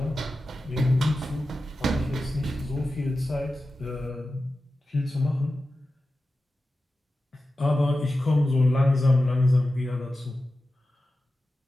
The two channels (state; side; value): normal; both; correlation 0.93